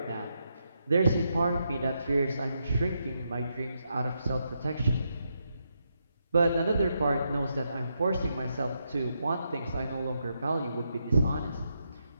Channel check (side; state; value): both; inverted; correlation -0.82